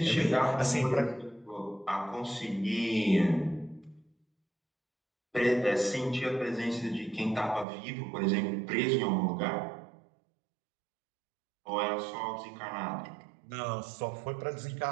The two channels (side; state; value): left; drops out; at 7.7 s